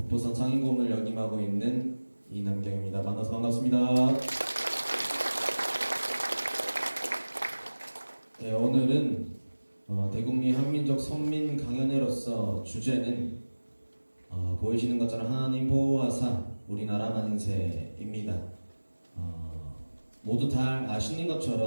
상임고문을 역임하고 있는 이남경입니다. 만나서 반갑습니다. 네, 오늘은 대국민 한민족 선민 강연회로서 주제는 보이시는 것처럼 하나님 보호하사 우리나라 만세입니다. 모두 다 아시는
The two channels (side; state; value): both; inverted; correlation -1.00